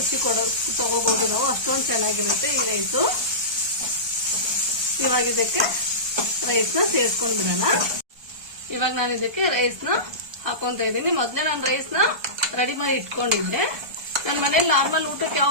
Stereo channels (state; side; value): late; left; 1.2 ms